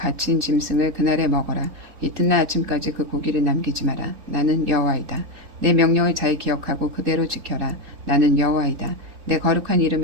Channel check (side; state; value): left; late; 4.0 ms